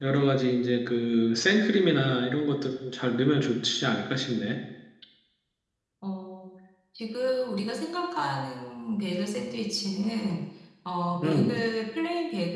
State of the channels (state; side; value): identical; both; correlation 1.00